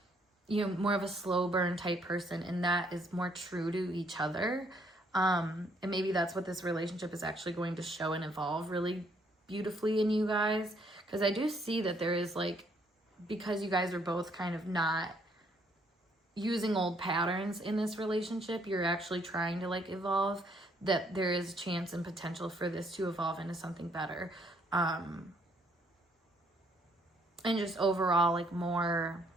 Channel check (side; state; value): both; normal; correlation 0.68